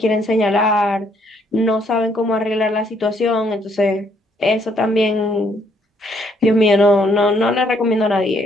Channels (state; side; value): normal; both; correlation 0.68